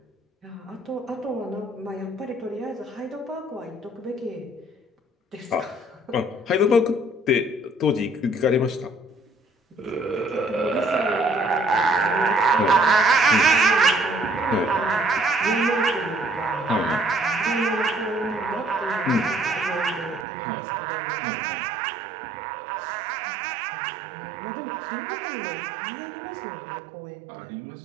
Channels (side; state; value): left; drops out; at 20.2 s